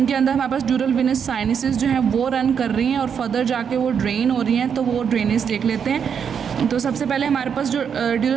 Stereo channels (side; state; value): left; quieter; 7.3 dB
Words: अंदर हमारे पास ड्यूरल विनस साइनसिस जो है वो रन कर रही हैं और फर्दर जाके वो ड्रेन हो रही हैं। तो वो ड्रेनेज देख लेते हैं। तो सबसे पहले हमारे पास जो